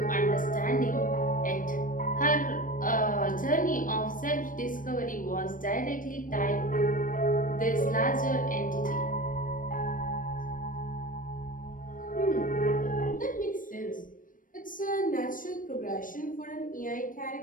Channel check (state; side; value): late; right; 0.39 ms